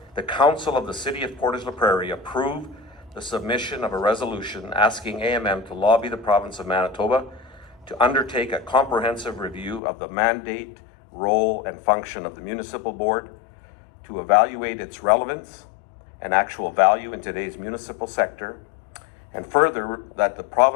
the Council of the City of Portage la Prairie approve the submission of a resolution asking AMM to lobby the province of Manitoba to undertake a comprehensive review of the mandate, role, and function of the municipal board, to evaluate its relevance and actual value in today's municipal sector, and further, that the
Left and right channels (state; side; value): drops out; right; at 9.8 s